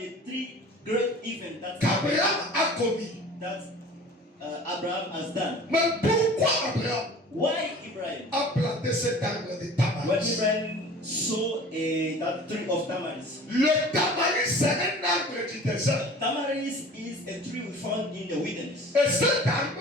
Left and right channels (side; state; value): both; normal; correlation 0.43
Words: three great events qu'Abraham a commis. that Abraham has done. Mais pourquoi Abraham Why Abraham? a planté cet arbre de When Tamaris? Abraham saw that tree of Tamaris. Le Tamaris, c'est un arbre du désert. Tamaris is a tree we found in the wilderness. Et cet arbre,